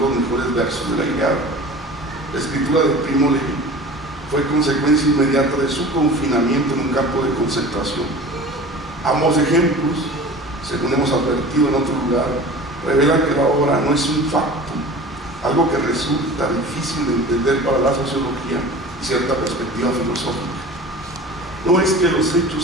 mejores versos de la Ilíada. La escritura de Primo Levi fue consecuencia inmediata de su confinamiento en un campo de concentración. Ambos ejemplos, según hemos advertido en otro lugar, revelan que la obra no es un facto, algo que resulta difícil de entender para la sociología y cierta perspectiva filosófica. No es que los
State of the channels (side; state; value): both; normal; correlation 0.38